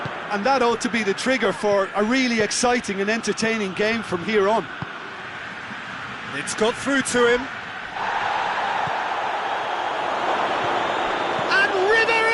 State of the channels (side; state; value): both; identical; correlation 1.00